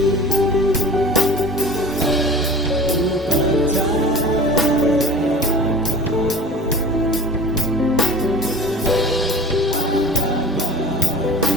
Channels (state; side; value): normal; both; correlation 0.40